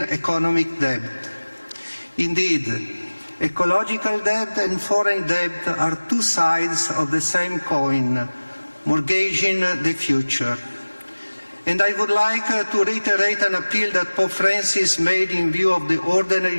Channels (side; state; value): both; inverted; correlation -1.00